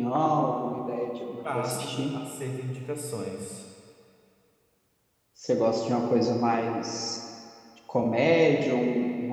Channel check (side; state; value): both; identical; correlation 1.00